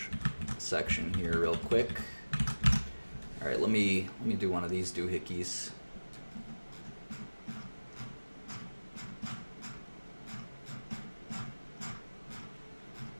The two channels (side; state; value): both; inverted; correlation -1.00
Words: section here real quick. All right, let me do one of these doohickeys.